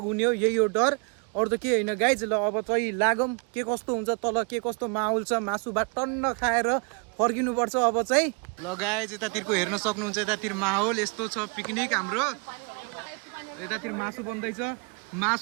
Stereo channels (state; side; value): quieter; left; 32.3 dB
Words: हुने हो, यही हो डर। अरू त के होइन गाइज। ल अब चाहिँ लागौँ, के कस्तो हुन्छ तल, के कस्तो माहौल छ। मासु भात टन्न खाएर फर्किनुपर्छ अब चाहिँ। ल गाइज यतातिरको हेर्न सक्नुहुन्छ, यतातिर माहौल यस्तो छ। पिकनिक हाम्रो यतातिर मासु बन्दैछ।